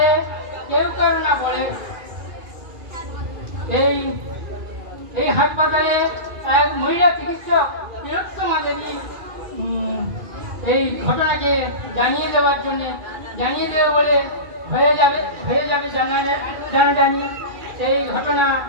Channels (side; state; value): left; late; 2.4 ms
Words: কেউ কারো না বলে। এই হাসপাতালে এক মহিলা চিকিৎসক তিলোত্তমা দেবী এই ঘটনাকে জানিয়ে দেবে বলে হয়ে যাবে জানাজানি। সেই ঘটনা